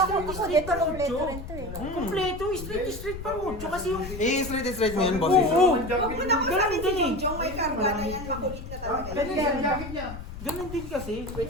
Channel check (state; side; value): noise; left; rumble, 10 dB below the sound